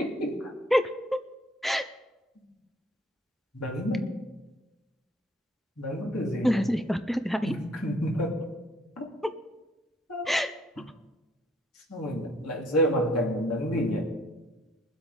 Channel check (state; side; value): normal; both; correlation 0.63